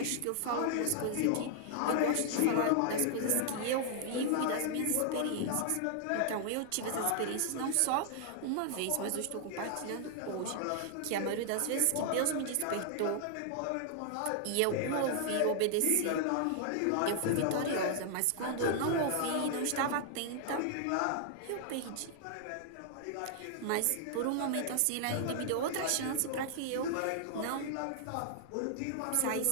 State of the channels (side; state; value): both; different; correlation 0.00